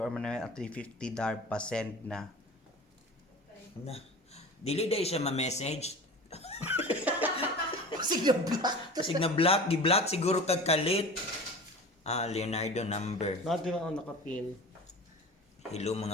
Manuel at 350 darb pa send na. Na. Dili dahil siya ma-message. Sige black. Kasi na black, gi-black siguro kag kalit. Leonardo number. Natin ang nakapin. Hello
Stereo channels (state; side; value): normal; both; correlation 0.36